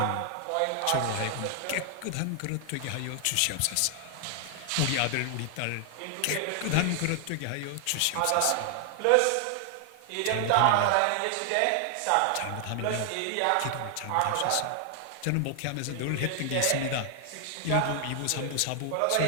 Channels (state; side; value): different; both; correlation 0.00